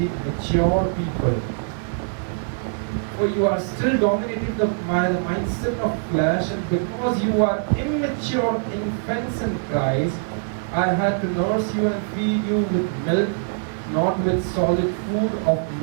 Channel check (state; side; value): silent; left; digital silence